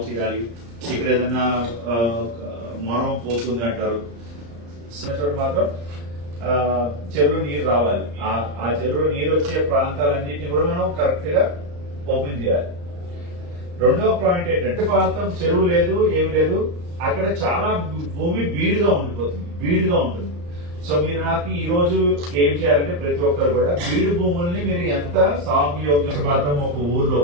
చేయాలి, ఇక్కడ ఏదైనా మొరం పోతుంది అంటారు, మాత్రం చెరువులో నీరు రావాలి. ఆ చెరువులో నీరు వచ్చే ప్రాంతాలన్నింటినీ కూడా మనం కరెక్ట్ గా ఓపెన్ చేయాలి. రెండవ పాయింట్ ఏంటంటే, ప్రాంతం చెరువు లేదు, ఏమి లేదు, అక్కడ చాలా భూమి బీడుగా ఉంటుంది. సో మీరు నాకు ఈ రోజు ఏం చేయాలంటే, ప్రతి ఒక్కరు కూడా బీడు భూముల్ని మీరు ఎంత సాగు యోగ్యం, ఒక ఊర్లో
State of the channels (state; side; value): late; left; 34 ms